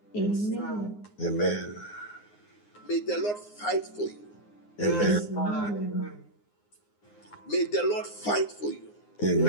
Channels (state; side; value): late; right; 9.7 ms